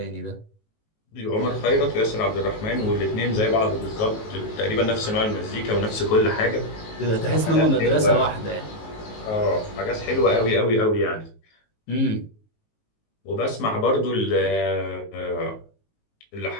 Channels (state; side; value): late; right; 19 ms